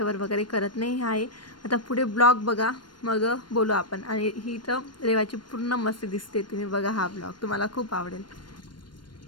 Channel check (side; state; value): right; late; 0.71 ms